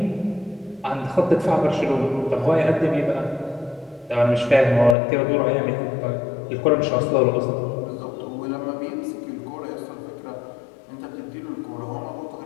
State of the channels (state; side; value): drops out; right; at 5.0 s